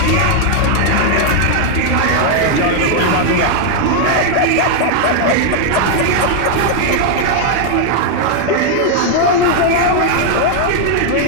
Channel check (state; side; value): different; both; correlation 0.00